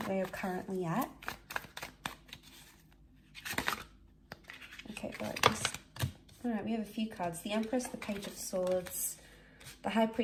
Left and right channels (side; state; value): both; identical; correlation 1.00